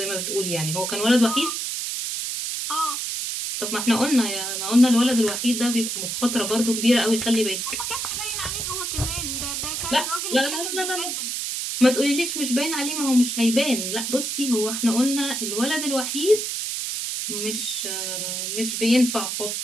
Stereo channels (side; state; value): right; noise; hiss, 3 dB below the sound